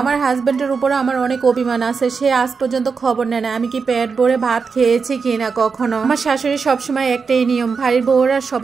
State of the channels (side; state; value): left; quieter; 5.3 dB